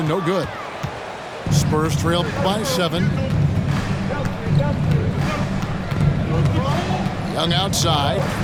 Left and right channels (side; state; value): both; identical; correlation 1.00